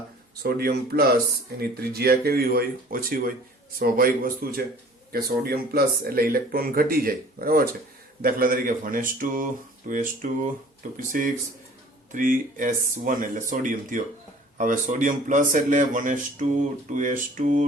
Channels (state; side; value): normal; both; correlation 0.49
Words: સોડિયમ પ્લસ એની ત્રિજ્યા કેવી હોય? ઓછી હોય. સ્વાભાવિક વસ્તુ છે કે સોડિયમ પ્લસ એટલે ઇલેક્ટ્રોન ઘટી જાય. બરાબર છે. દાખલા તરીકે 1s2 2s2 2p6 3s1 એટલે સોડિયમ થયો. હવે સોડિયમ પ્લસ એટલે 1s2 2s2